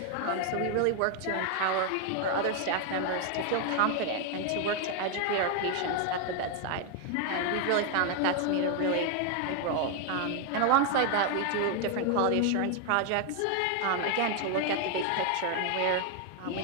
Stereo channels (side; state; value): both; different; correlation 0.01